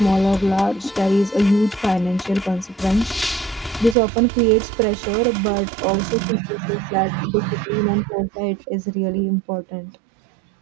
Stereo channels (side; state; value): left; drops out; at 4.0 s